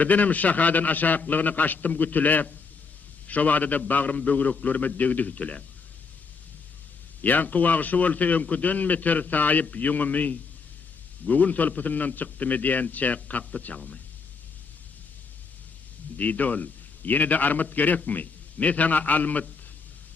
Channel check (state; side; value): quieter; right; 4.9 dB